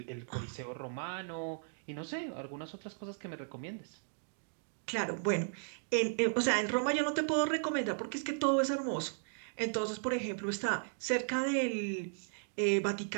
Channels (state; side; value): silent; left; digital silence